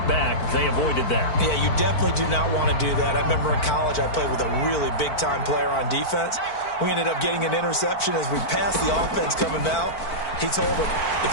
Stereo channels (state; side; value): late; right; 4.5 ms